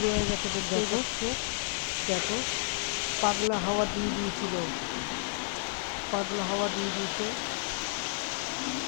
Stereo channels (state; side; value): silent; right; 56 dB below the other